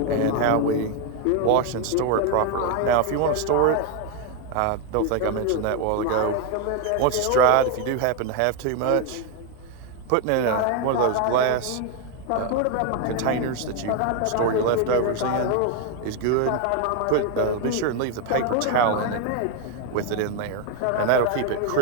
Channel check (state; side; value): different; both; correlation 0.01